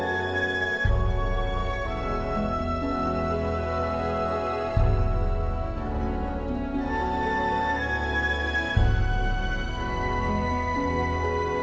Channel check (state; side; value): identical; both; correlation 1.00